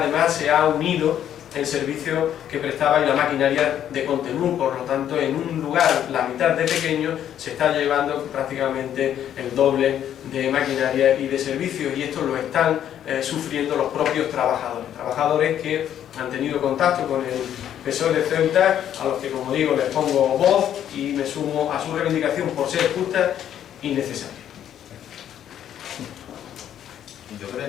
se ha unido el servicio que prestaba y la maquinaria de Contenú. Por lo tanto, en un lugar la mitad de pequeño se está llevando prácticamente el doble de maquinaria y de servicios, y esto lo están sufriendo los propios trabajadores que han tenido contacto con el PSOE de Ceuta, a los que, como digo, les pongo voz y me sumo a su reivindicación por ser justa y necesaria. Yo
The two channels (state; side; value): quieter; right; 10.3 dB